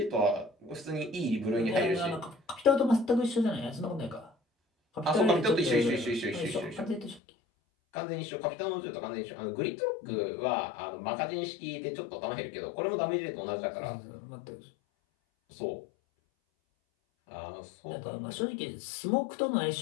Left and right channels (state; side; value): drops out; right; at 7.2 s